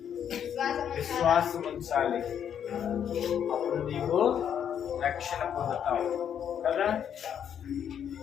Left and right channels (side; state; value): right; quieter; 8.8 dB